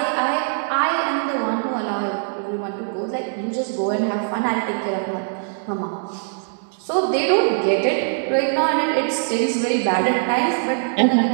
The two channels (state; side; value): silent; left; digital silence